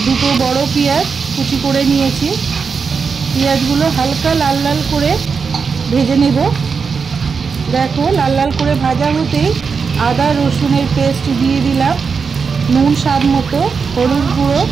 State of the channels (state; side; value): quieter; left; 5.5 dB